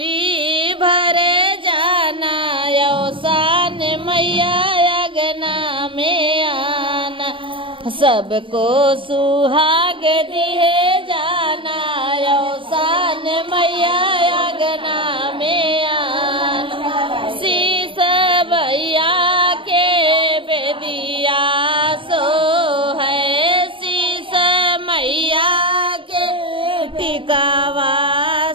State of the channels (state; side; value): late; left; 0.25 ms